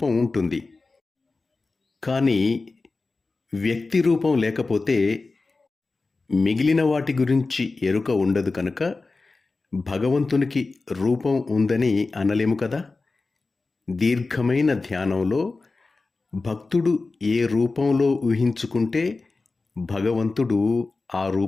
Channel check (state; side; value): quieter; right; 3.7 dB